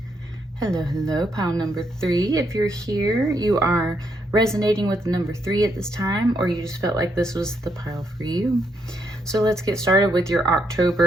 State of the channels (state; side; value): normal; both; correlation 0.76